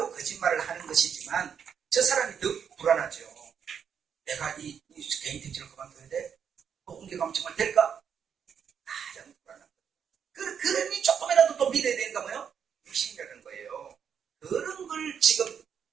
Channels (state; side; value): quieter; left; 7.6 dB